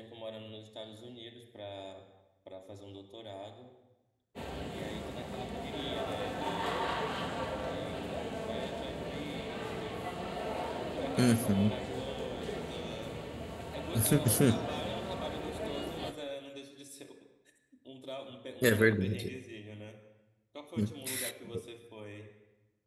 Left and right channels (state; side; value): identical; both; correlation 1.00